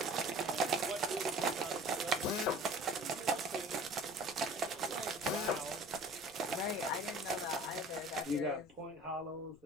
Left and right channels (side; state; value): left; noise; rumble, 27 dB below the sound